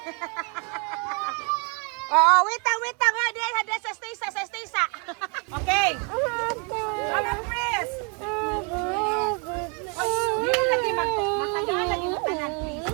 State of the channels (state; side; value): quieter; left; 35.7 dB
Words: Oo, wait lang. Hadi sa stisa. Okay. Mama, please. Dili lagi matagal lagi mo tanan, please.